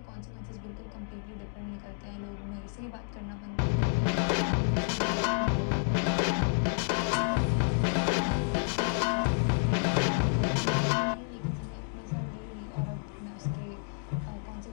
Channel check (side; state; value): right; silent; 58 dB below the other